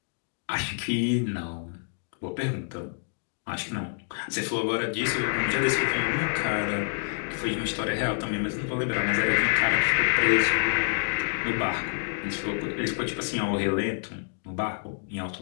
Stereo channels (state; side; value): silent; right; digital silence